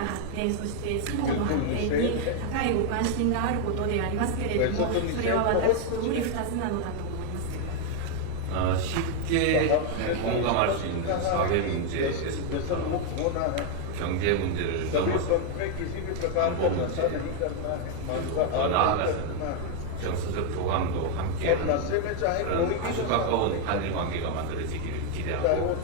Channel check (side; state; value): both; different; correlation 0.00